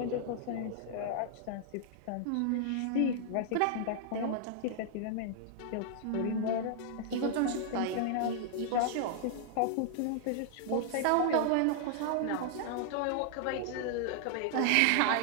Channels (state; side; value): different; both; correlation -0.01